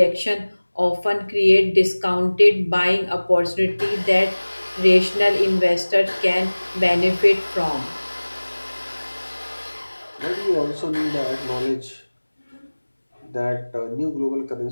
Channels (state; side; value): inverted; both; correlation -1.00